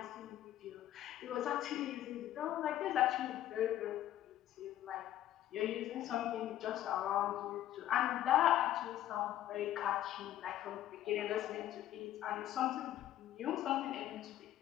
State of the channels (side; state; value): right; quieter; 12.6 dB